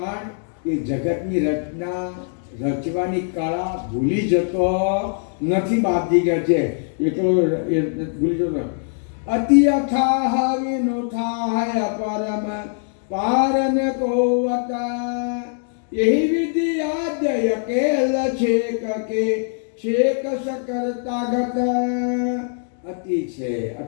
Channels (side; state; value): right; silent; 64 dB below the other